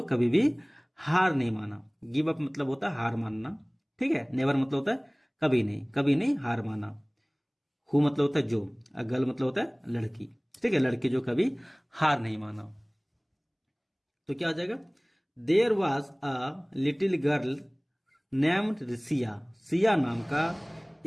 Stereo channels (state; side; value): identical; both; correlation 1.00